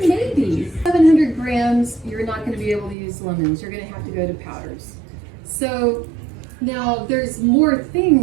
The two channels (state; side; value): drops out; left; at 3.0 s